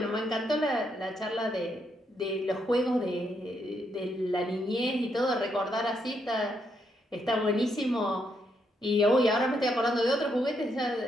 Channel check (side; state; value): both; normal; correlation 0.77